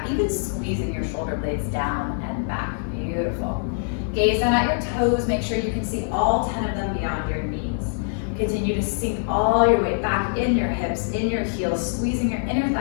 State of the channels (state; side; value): silent; right; digital silence